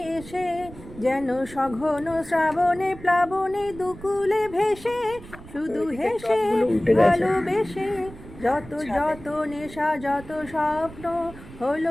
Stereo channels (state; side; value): noise; right; rumble, 17 dB below the sound